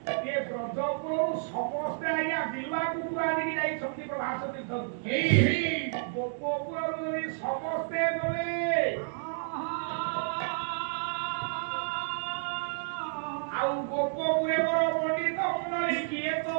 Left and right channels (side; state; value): left; silent; digital silence